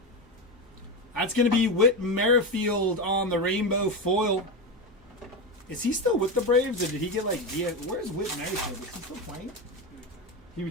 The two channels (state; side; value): normal; both; correlation 0.16